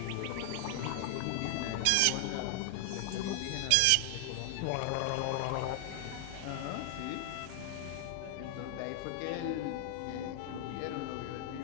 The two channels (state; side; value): different; both; correlation 0.00